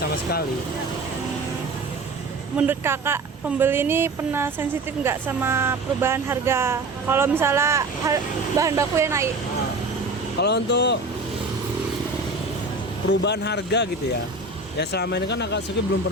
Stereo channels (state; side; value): quieter; left; 3.3 dB